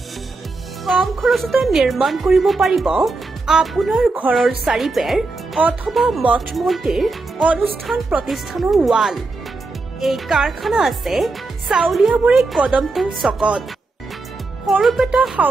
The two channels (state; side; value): quieter; left; 3.6 dB